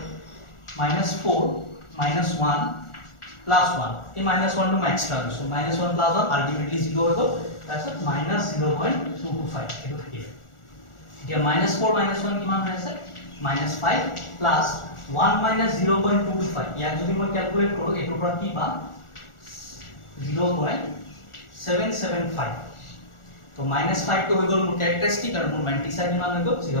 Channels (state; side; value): late; right; 1.4 ms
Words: -4 -1 +1 এই -1 টো মই এক্সট্ৰা লৈছো -1 + 1 আলটিমেটলি 0 হৈ গ'ল তাৰপিছত -0.225 এটো থাকিলে এতিয়া -4 -1 কিমান হৈ আছে -5 প্লাস 1 -0.225 ইয়াক যদি মই ক্যালকুলেট কৰো এটোৰ পৰা কি পাম 0.775 তো -5 টো হৈ গ'ল মোৰ ক্যাৰেক্টাৰিষ্টিক আৰু মোৰ মেন্টিছা কিমান হৈ গ'ল